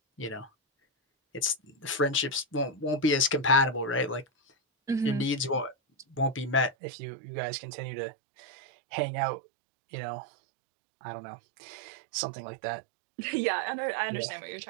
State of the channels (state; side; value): drops out; left; at 6.8 s